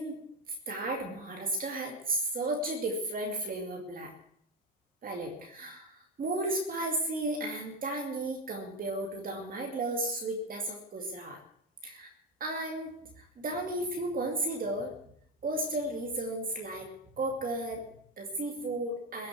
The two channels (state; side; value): normal; both; correlation 0.11